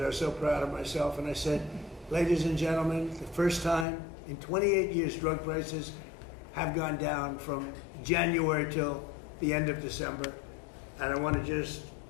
I was so proud of myself. And I said, ladies and gentlemen, the first time in 28 years drug prices have gone down from January till the end of December. And I want to just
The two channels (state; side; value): drops out; right; at 3.9 s